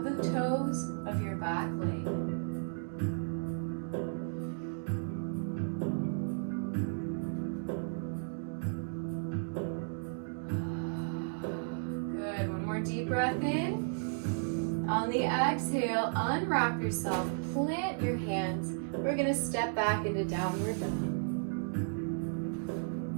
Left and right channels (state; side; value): silent; left; digital silence